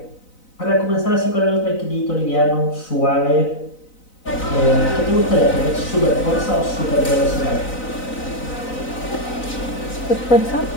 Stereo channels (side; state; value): right; late; 4.0 ms